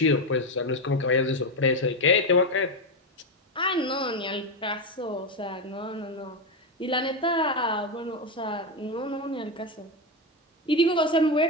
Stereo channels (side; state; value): both; normal; correlation 0.11